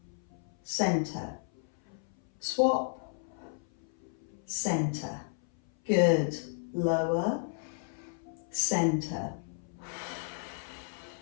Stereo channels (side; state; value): right; silent; 56 dB below the other